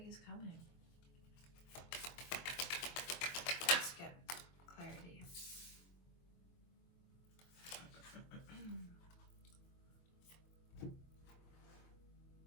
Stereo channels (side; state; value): right; late; 23 ms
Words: is coming. Let's get clarity.